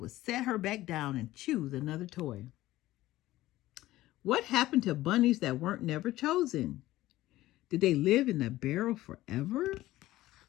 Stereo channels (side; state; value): right; quieter; 16.2 dB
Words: set her back down and choose another toy. What happened to bunnies that weren't never chosen? Did they live in the barrel forever?